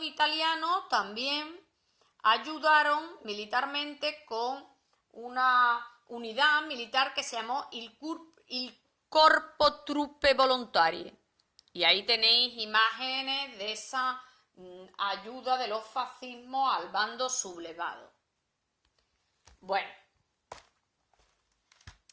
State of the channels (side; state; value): both; identical; correlation 1.00